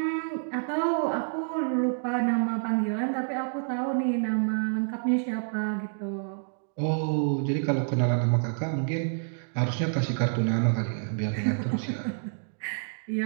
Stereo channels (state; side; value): silent; left; digital silence